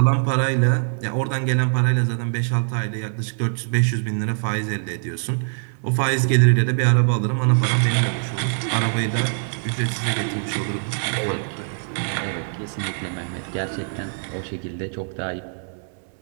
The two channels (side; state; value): left; silent; 63 dB below the other